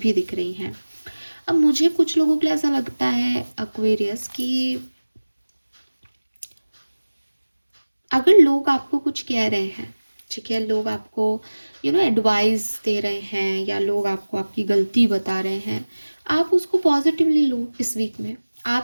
भी दिख रही हैं। अब मुझे कुछ लोगों के लिए ऐसा लगता है एक्वेरियस कि अगर लोग आपको कुछ कह रहे हैं, ठीक है, लोग आपको एडवाइस दे रहे हैं, या लोग आपको आपकी गलती बता रहे हैं, आप उसको पॉजिटिवली लो इस वीक में।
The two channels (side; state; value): both; inverted; correlation -1.00